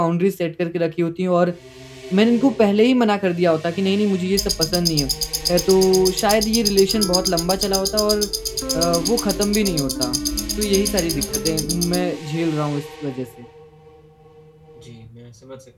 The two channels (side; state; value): both; identical; correlation 1.00